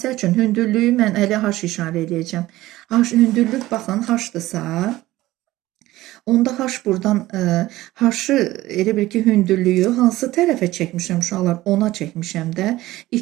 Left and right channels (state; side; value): quieter; left; 16.9 dB